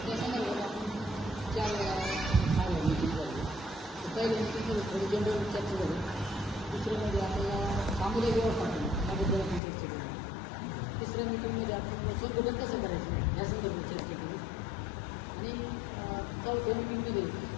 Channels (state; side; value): drops out; right; at 9.6 s